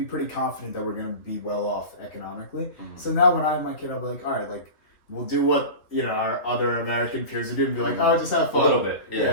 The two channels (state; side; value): late; right; 3.2 ms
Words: pretty confident that we're going to be well off economically. Mm-hmm. So now when I have my kid, I'll be like, all right, we'll do what our other American peers are doing. Be like, oh, just have fun. A little bit,